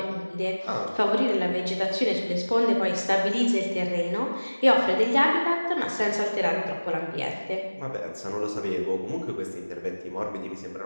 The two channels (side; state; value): both; inverted; correlation -1.00